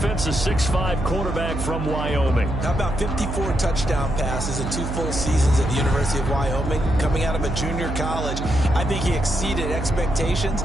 a 6'5" quarterback from Wyoming. How about 54 touchdown passes in 2 full seasons at the University of Wyoming? Coming out of a junior college, I think he exceeded expectations,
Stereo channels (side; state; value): right; noise; hum, 4 dB below the sound